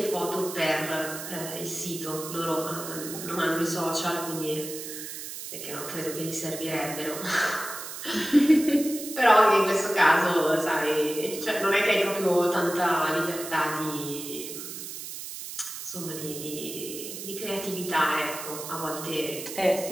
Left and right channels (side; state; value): right; noise; hiss, 9 dB below the sound